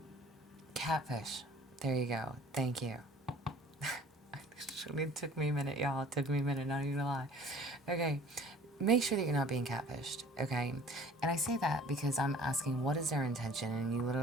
Catfish. There you go. Thank you. It took me a minute, y'all. It took me a minute, not even gonna lie. Okay. Make sure that you're not being catfished, okay? And I say that because I'm asking what is their intention, and you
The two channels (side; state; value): both; normal; correlation 0.49